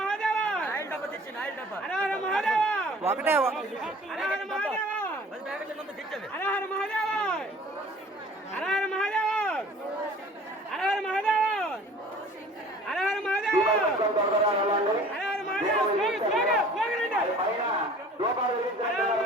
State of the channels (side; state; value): both; normal; correlation 0.48